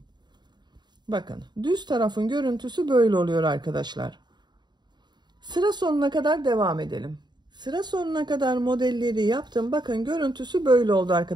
Bakın düz tarafın görüntüsü böyle oluyor arkadaşlar. Sıra sonuna kadar devam edelim. Sıra sonuna kadar modelleri yaptım. Bakın görüntüsü böyle oldu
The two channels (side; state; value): left; late; 0.21 ms